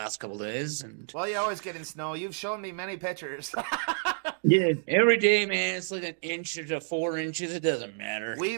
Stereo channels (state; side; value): silent; left; digital silence